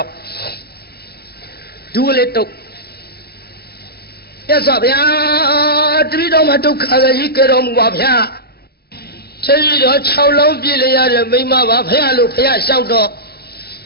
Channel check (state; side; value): late; right; 0.46 ms